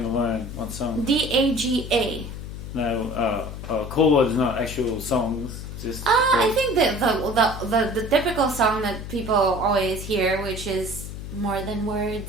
to learn? What song? DAGA. No, chords, not actual songs. Just. I think that the typical song that people always hear, which is More Than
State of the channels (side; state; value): left; noise; hum, 9 dB below the sound